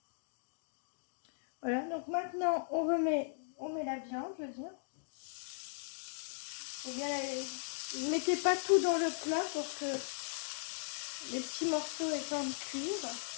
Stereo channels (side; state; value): right; silent; digital silence